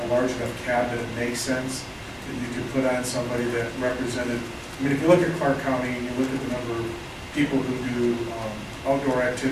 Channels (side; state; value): both; identical; correlation 1.00